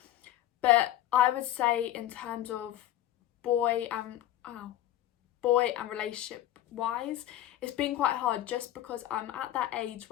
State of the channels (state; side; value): quieter; right; 13.1 dB